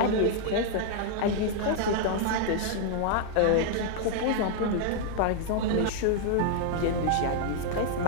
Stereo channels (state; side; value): different; both; correlation 0.00